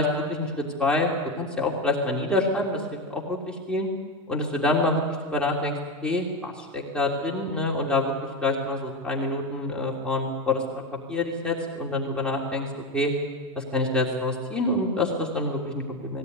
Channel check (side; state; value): both; normal; correlation 0.15